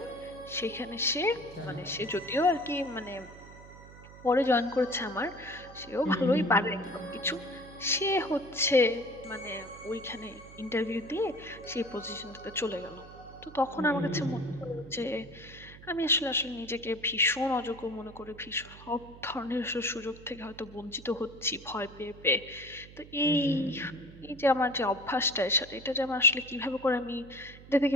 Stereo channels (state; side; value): noise; right; hum, 18 dB below the sound